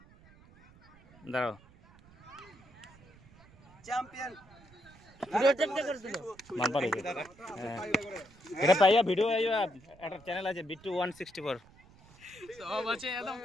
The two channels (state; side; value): noise; right; rumble, 25 dB below the sound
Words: দাঁড়াও মান পারে এটা পাইয়া ভিডিও আইয়া একটা চ্যানেল আছে বিট্টু 164 সব আছে একদম